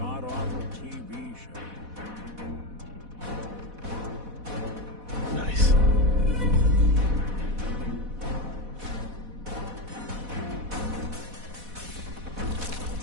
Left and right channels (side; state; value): left; late; 4.1 ms